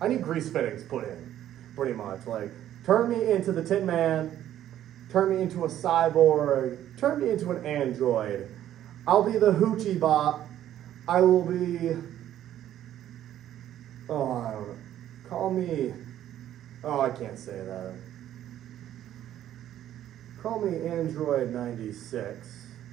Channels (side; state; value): left; quieter; 11.9 dB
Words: need grease fittings put in, pretty much. Turn me into the Tin Man, turn me into a cyborg, turn me into an android. I'll be the Hoochie Bot. I will be, I don't know. Call me, I can't say that. Call me Android 96,